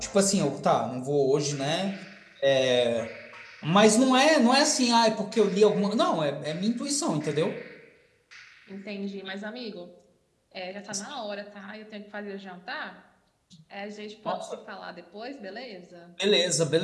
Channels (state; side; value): identical; both; correlation 1.00